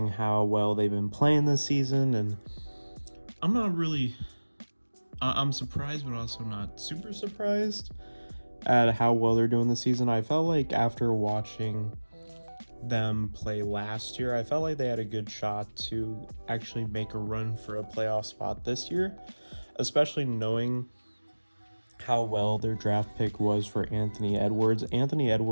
how well they've been playing this season. And I'm not really, I'm surprised, but also not super surprised at how well they're doing this season. I felt like after watching them play last year, I felt like they had a good shot to actually make a run for a playoff spot this year, especially knowing how well their draft pick was for Anthony Edwards. Anthony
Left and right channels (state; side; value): inverted; both; correlation -1.00